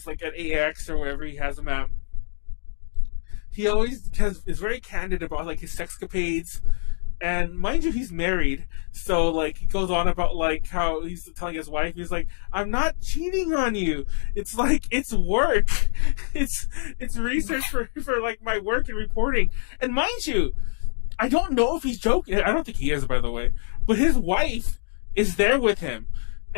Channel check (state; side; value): silent; right; 62 dB below the other